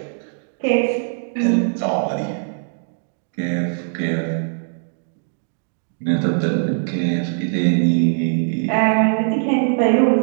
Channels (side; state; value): left; silent; digital silence